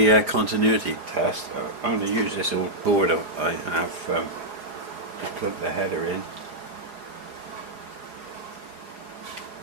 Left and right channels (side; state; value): left; late; 4.9 ms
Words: continuity test, I'm going to use this old board I have to plug the header in,